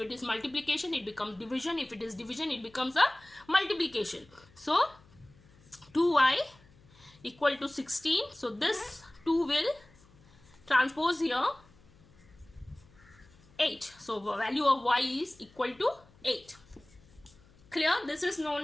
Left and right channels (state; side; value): noise; left; hum, 27 dB below the sound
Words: is multiplication, it becomes division. If it is division, it becomes a multiplication. So 2y equal to 16. So this 2 will transpose here 8. So value of y is equal to 8. Clear? This is known